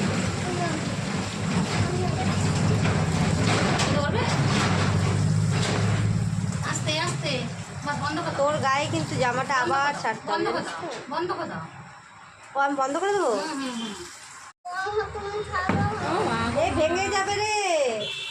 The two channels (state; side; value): identical; both; correlation 1.00